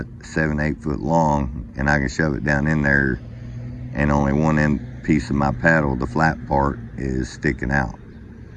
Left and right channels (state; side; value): identical; both; correlation 1.00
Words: 7, 8 foot long, and I can shove it down in there, and only one end piece of my paddle, the flat part, is sticking out.